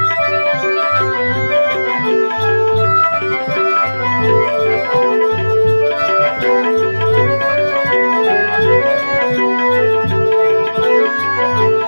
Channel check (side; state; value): both; inverted; correlation -1.00